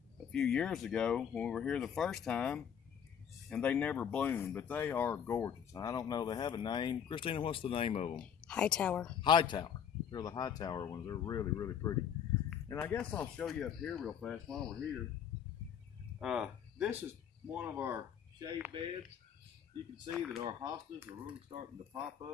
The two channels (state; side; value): quieter; right; 8.3 dB